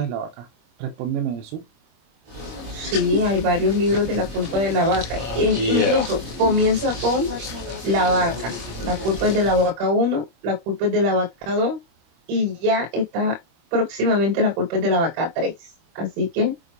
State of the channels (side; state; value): left; late; 26 ms